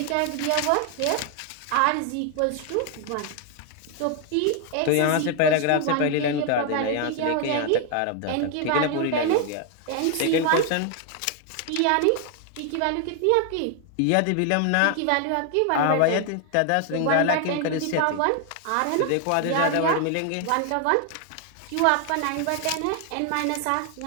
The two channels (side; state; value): both; different; correlation 0.00